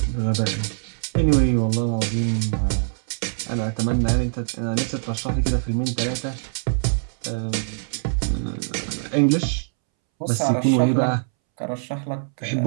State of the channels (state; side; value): silent; left; 63 dB below the other